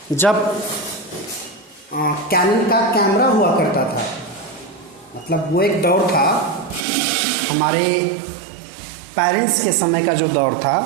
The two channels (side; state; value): left; drops out; at 6.9 s